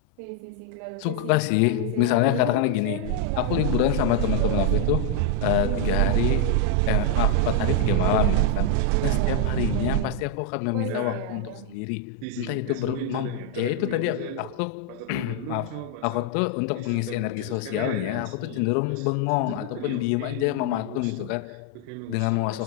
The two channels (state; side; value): different; both; correlation 0.00